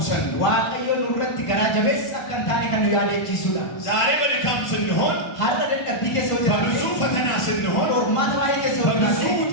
ነው። waaqayyo nurratti garaa jabeessa akka hin taane kan nu yaadachiisudha ዛሬ በድካም ስንሆን፣ har'a dadhabbii keessa yoo በብዙ jiraanne ፈተና ስንሆን፣ qormaata baay'ee keessa yoo በብዙ jiraanne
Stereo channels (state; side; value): late; right; 1.5 ms